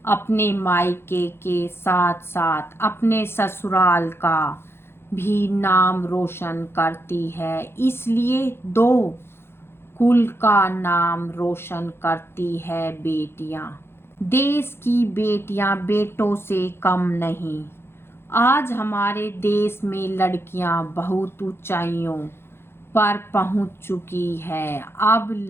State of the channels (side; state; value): right; late; 0.12 ms